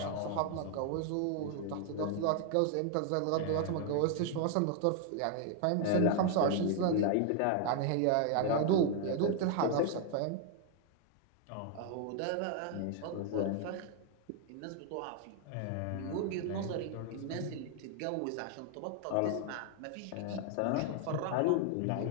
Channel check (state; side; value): different; both; correlation 0.00